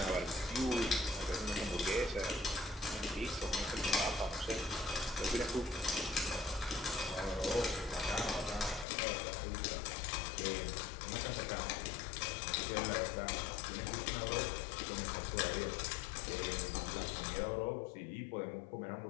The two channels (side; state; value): right; drops out; at 8.8 s